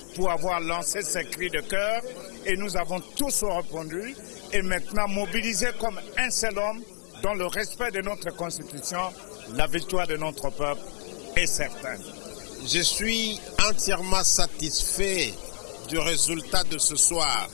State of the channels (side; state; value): right; silent; 60 dB below the other